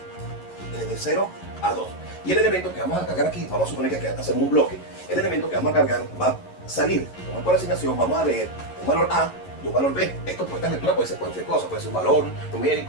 desde 0 a 2. Y el elemento que vamos a cargar aquí, vamos a suponer que hacemos un bloque, el elemento que vamos a cargar va a salir, como es por asignación, vamos a leer un valor A y un valor B. Esto esta lectura puede ser cualquier cosa, puede ser un valor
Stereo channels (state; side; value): late; right; 11 ms